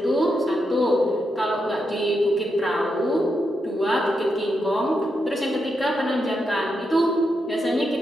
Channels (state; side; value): normal; both; correlation 0.84